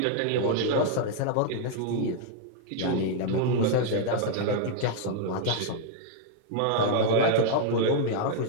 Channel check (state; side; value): different; both; correlation -0.01